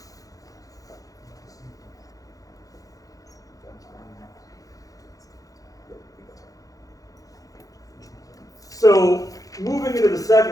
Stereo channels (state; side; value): late; right; 0.17 ms